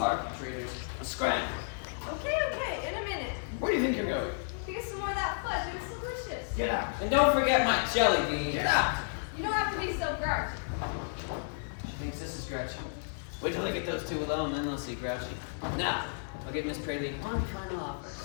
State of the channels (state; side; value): silent; right; digital silence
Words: traitors. Let's scram. Okay, in a minute. Where do you think you're going? To get some more of that fudge. It was delicious. Get out. And don't forget my jelly bean. Get out. You don't have to be so grouchy. She thinks this is grouchy. Wait till I get those two alone, then they'll see grouchy. Now, I'll give Miss Praline one final offer.